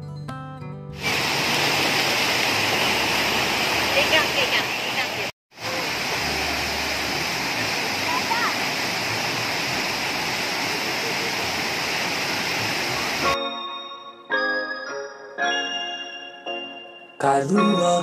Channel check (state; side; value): identical; both; correlation 1.00